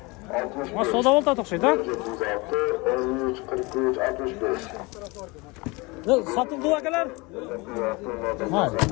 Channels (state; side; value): quieter; right; 25.8 dB